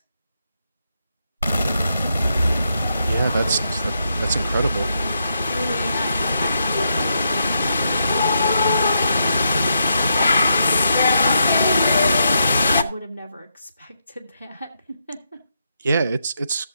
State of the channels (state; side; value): inverted; both; correlation -0.82